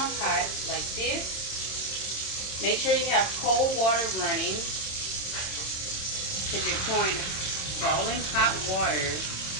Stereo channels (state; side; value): late; right; 26 ms